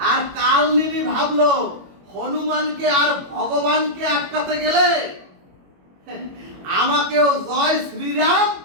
আর কালনেমি ভাবলো হনুমানকে আর ভগবানকে আটকাতে গেলে আমাকেও জয়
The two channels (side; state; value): left; late; 21 ms